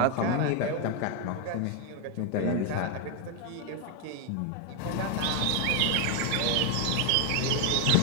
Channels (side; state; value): both; different; correlation 0.01